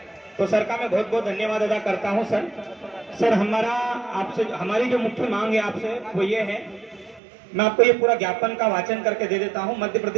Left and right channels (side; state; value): left; drops out; at 7.2 s